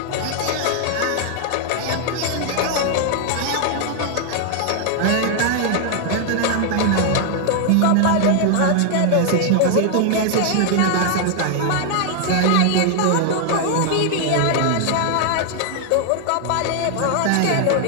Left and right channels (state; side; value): different; both; correlation 0.00